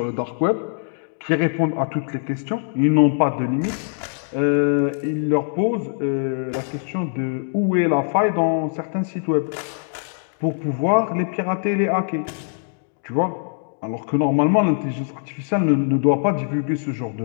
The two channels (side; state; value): right; silent; digital silence